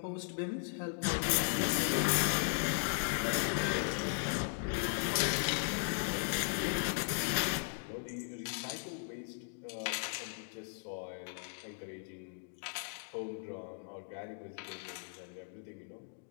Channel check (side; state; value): right; silent; digital silence